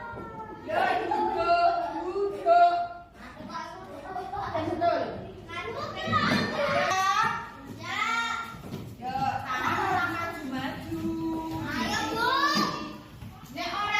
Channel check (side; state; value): both; identical; correlation 1.00